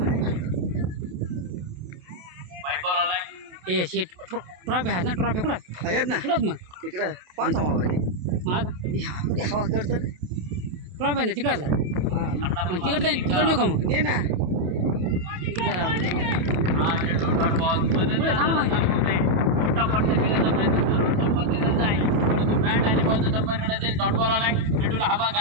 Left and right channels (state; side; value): late; left; 27 ms